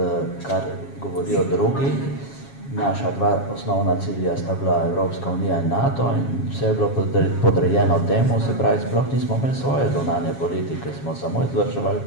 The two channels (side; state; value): right; late; 7.3 ms